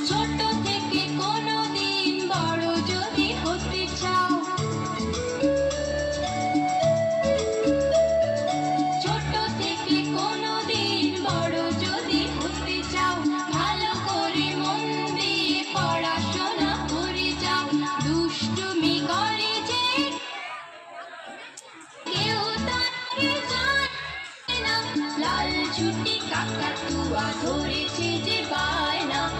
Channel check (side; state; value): both; identical; correlation 1.00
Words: ছোট থেকে কোনোদিন বড় যদি হতে চাও, ছোট থেকে কোনোদিন বড় যদি হতে চাও, ভালো করে মন দিয়ে পড়াশোনা করে যাও। দুষ্টুমি করে যে কেউ তাকে জানে না, লাল ছুটি কাকাতুয়া ধরেছে যে বায়না,